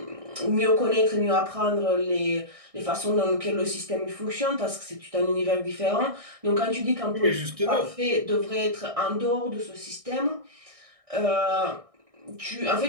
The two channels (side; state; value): left; late; 1.6 ms